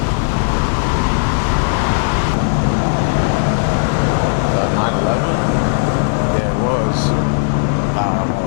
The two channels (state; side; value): silent; right; 69 dB below the other